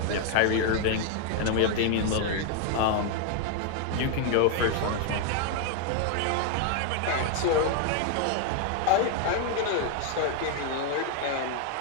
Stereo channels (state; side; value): different; both; correlation 0.00